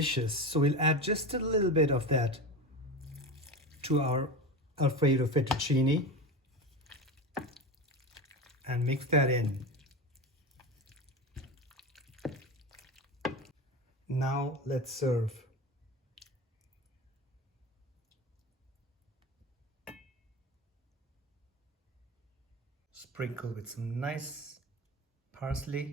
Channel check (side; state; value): both; normal; correlation 0.24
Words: so we'll add just a little bit of that to our Alfredo fettuccine and mix that in. Now let's serve. Sprinkle with some nice